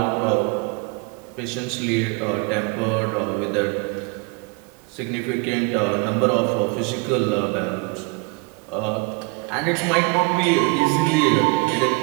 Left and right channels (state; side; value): quieter; left; 31.1 dB